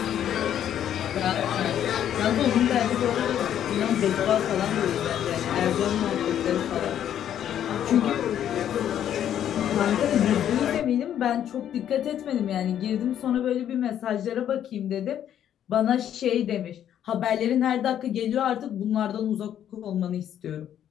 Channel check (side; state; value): right; quieter; 10.3 dB